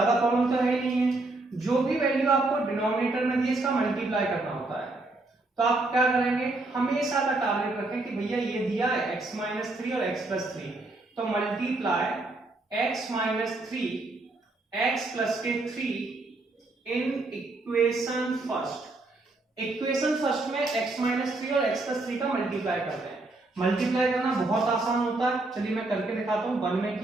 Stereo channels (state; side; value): quieter; left; 3.1 dB